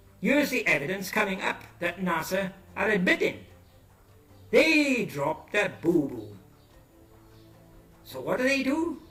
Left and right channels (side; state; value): both; identical; correlation 1.00